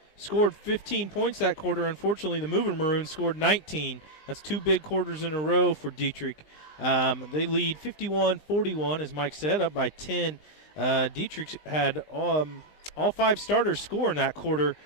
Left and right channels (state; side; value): late; right; 20 ms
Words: scored 15 points that quarter. Unfortunately, the Movin Maroons scored 19. That's 2 big quarters in a row for Dieterich. They lead 51-41, as Mike said, up by 10. Dieterich had all 5 starters score in that quarter.